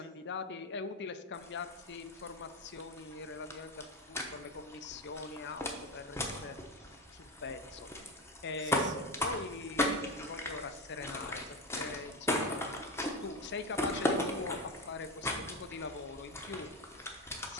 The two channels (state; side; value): normal; both; correlation 0.19